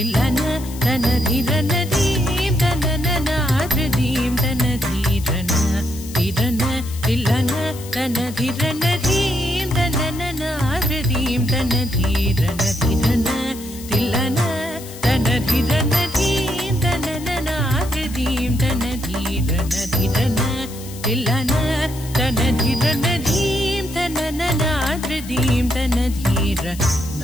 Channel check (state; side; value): noise; left; hiss, 15 dB below the sound